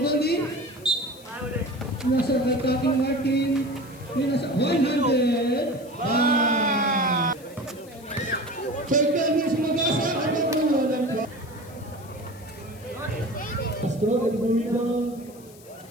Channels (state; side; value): noise; left; hiss, 23 dB below the sound